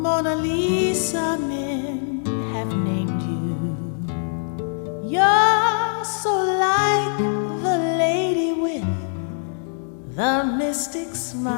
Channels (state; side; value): silent; right; 64 dB below the other